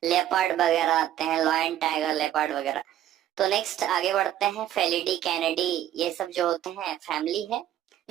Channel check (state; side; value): quieter; left; 11.8 dB